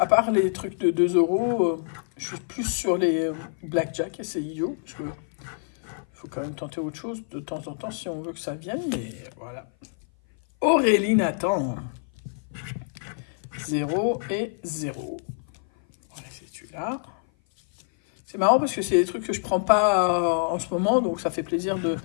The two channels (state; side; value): silent; right; 56 dB below the other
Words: part les trucs de 2 €, je suis plus sur les blackjack et c'est idiot. Parce que faut quand même tenter autre chose de temps en temps si on veut que ça vienne. Mais voilà. Aurélie Nathan. 0 et 0. Voilà, c'est celui-là. C'est marrant parce que c'est des trucs que je prends pas en ce moment, donc ça fait plaisir de